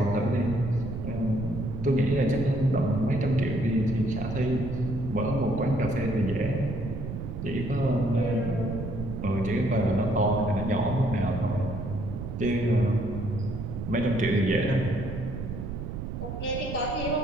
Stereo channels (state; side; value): noise; right; rumble, 6 dB below the sound